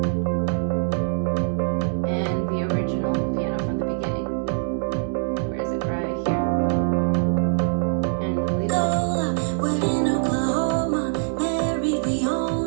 and the original piano from the beginning. Where is it? Right here. And the lead vocal. We're in Oklahoma, married, we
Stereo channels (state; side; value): silent; left; 63 dB below the other